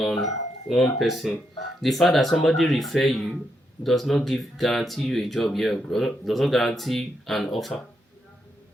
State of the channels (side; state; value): both; normal; correlation 0.81